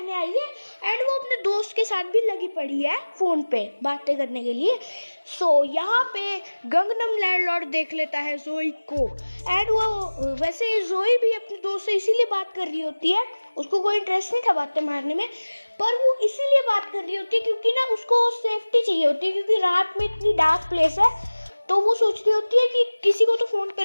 आई है एंड वो अपने दोस्त के साथ भी लगी पड़ी है फ़ोन पे बातें करने के लिए। सो यहाँ पे गंगनम लैंडलॉर्ड देख लेता है जोई को एंड वो वैसे जोई भी अपने दोस्त से इसीलिए बात कर रही होती है, उसको कोई इंटरेस्ट नहीं था बातें मारने में, पर वो इसीलिए बात कर रही होती है क्योंकि ना उसको सेफ्टी चाहिए होती है, क्योंकि रात में इतनी डार्क प्लेस है। तो वो सोच रही होती है कि किसी को तो फ़ोन पे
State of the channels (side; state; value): both; inverted; correlation -1.00